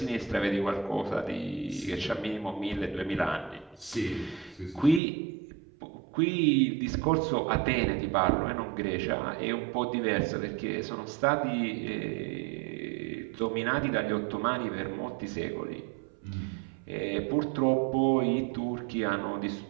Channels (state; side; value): drops out; left; at 5.0 s